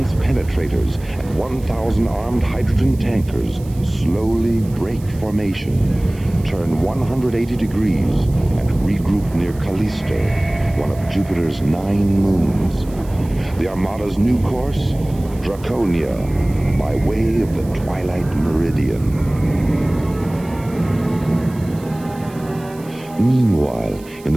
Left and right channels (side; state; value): right; noise; hiss, 23 dB below the sound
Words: penetrators, and 1,000 armed hydrogen tankers slowly break formation, turn 180 degrees, and regroup near Callisto, one of Jupiter's 9 moons. The Armada's new course? Draconia, by way of the Twilight Meridian. Meanwhile, in